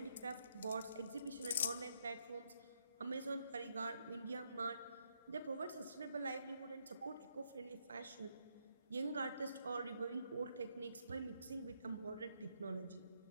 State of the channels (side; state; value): both; inverted; correlation -0.76